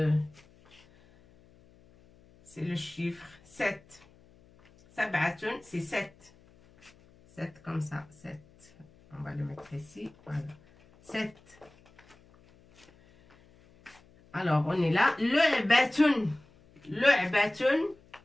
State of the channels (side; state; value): left; noise; hum, 28 dB below the sound